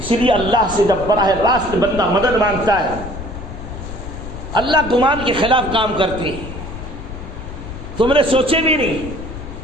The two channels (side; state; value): left; noise; rumble, 10 dB below the sound